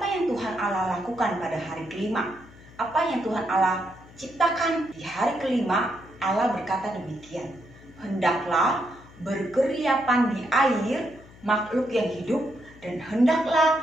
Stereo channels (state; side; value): noise; left; hum, 22 dB below the sound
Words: yang Tuhan Allah lakukan pada hari kelima? Apa yang Tuhan Allah ciptakan di hari kelima? Allah berkata demikian, hendaklah berkeriapan di air makhluk yang hidup, dan hendaklah